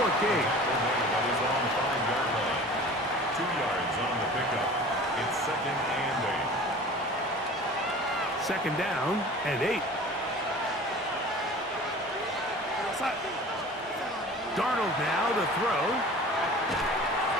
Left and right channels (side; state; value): both; normal; correlation 0.42